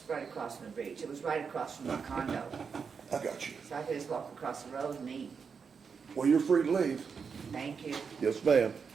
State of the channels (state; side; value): quieter; left; 5.9 dB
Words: right across from the beach. It was right across from my condo, I got you. so I could just walk across the road and eat. Well, you're free to leave. Thank you. Yes, ma'am.